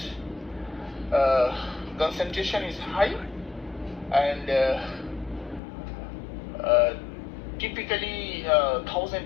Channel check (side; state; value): right; drops out; at 5.6 s